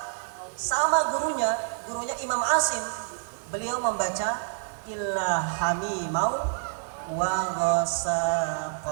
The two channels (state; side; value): silent; left; 59 dB below the other